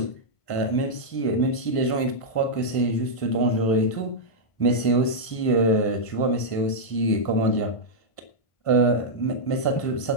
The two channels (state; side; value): late; right; 1.5 ms